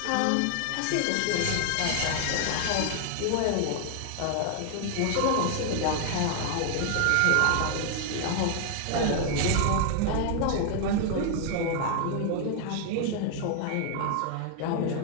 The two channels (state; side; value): different; both; correlation 0.00